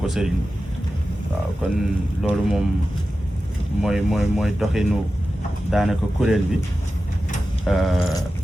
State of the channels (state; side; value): normal; both; correlation 0.93